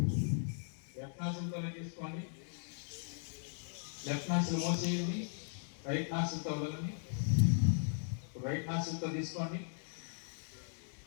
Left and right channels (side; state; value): right; silent; digital silence